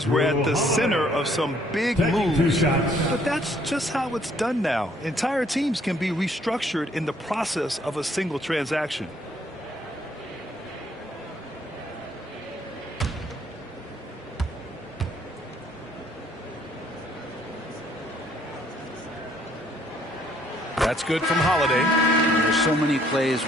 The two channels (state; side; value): normal; both; correlation 0.64